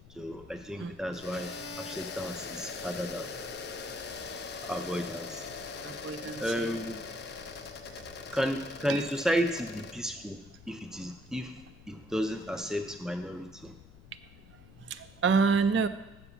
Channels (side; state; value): left; noise; rumble, 20 dB below the sound